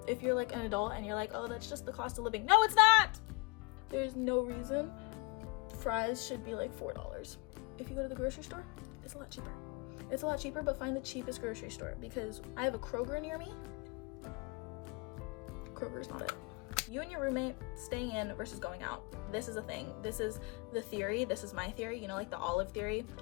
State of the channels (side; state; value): right; quieter; 27.8 dB